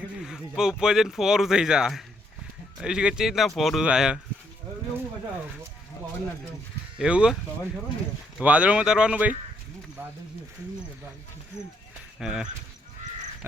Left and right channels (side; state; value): both; normal; correlation 0.72